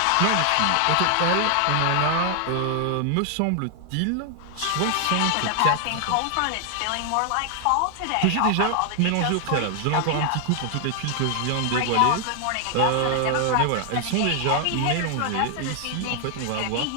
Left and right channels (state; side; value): different; both; correlation 0.00